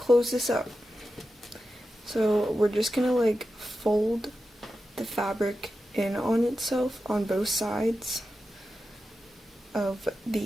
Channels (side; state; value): both; normal; correlation 0.91